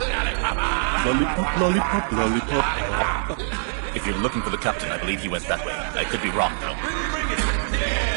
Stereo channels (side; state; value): left; silent; 63 dB below the other